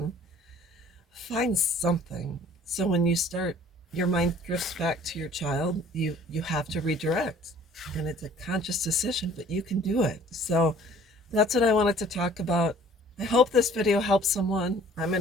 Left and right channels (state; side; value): normal; both; correlation 0.53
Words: Find something. So when you start, your mind drifts back to your child. You have to redirect, and it's a conscious decision, but you can do it. So that's what I wanted to talk about. I hope this video helps someone. I'm